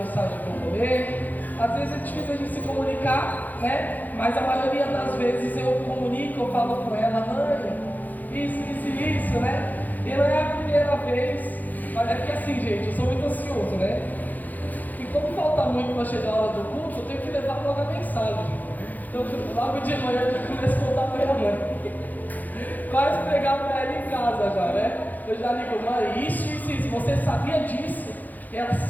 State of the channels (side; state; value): right; late; 0.083 ms